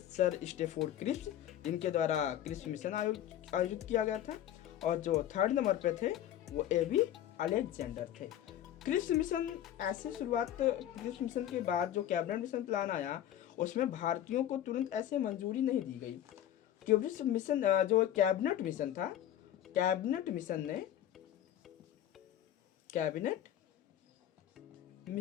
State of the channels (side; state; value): right; quieter; 11.6 dB